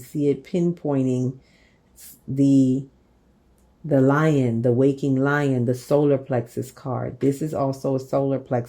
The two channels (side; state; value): both; identical; correlation 1.00